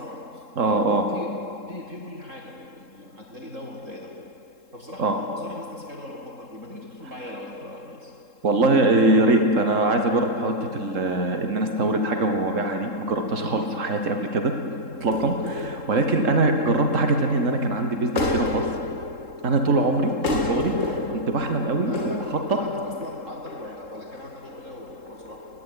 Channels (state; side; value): late; left; 3.7 ms